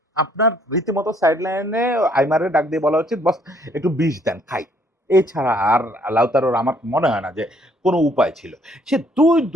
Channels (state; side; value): normal; both; correlation 0.64